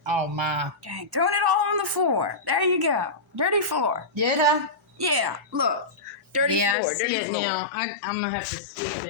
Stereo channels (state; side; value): drops out; right; at 6.8 s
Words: oh, my. Dang, throwing it all on the floor. There you go. Dirty floor. Did I? Yeah, look. Dirty Yeah, floor. I see Dirty it floor. now. I'm going to have to sweep